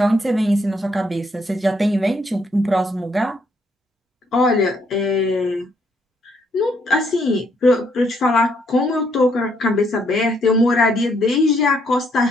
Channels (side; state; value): both; normal; correlation 0.71